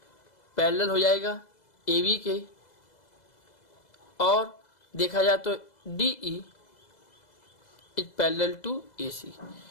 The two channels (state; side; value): late; right; 2.0 ms